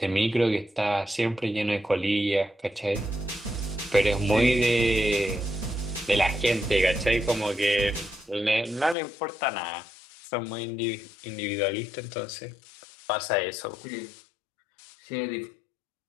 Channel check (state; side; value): drops out; right; at 9.0 s